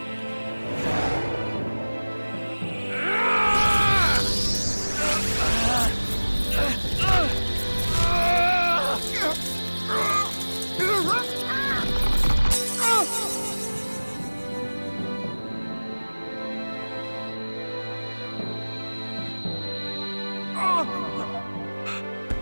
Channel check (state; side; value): inverted; both; correlation -1.00